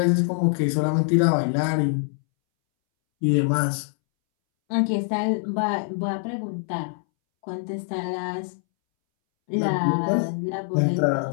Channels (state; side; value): silent; right; 63 dB below the other